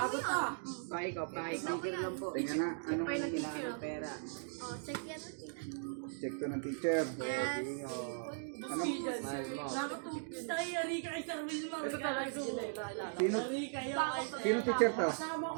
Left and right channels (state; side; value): silent; left; digital silence